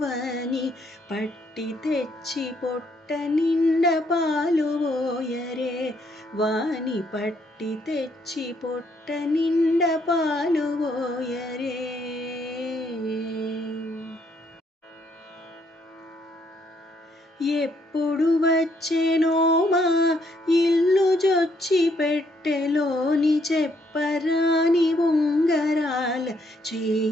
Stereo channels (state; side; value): normal; both; correlation 0.71